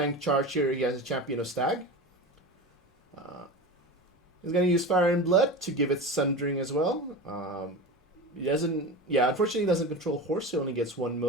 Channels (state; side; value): normal; both; correlation 0.27